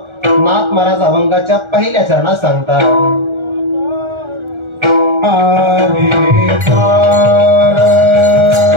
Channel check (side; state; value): left; late; 1.4 ms